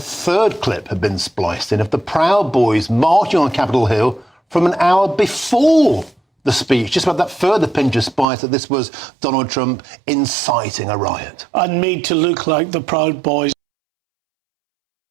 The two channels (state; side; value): drops out; left; at 8.2 s